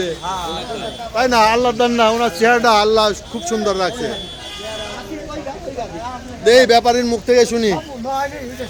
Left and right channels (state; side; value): identical; both; correlation 1.00